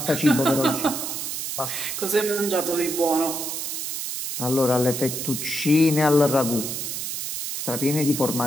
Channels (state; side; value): noise; right; hiss, 4 dB below the sound